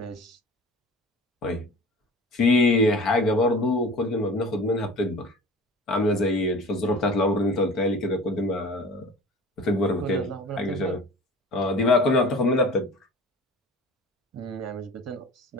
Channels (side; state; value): both; normal; correlation 0.40